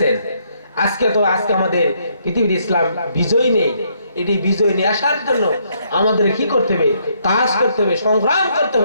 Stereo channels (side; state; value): both; inverted; correlation -0.71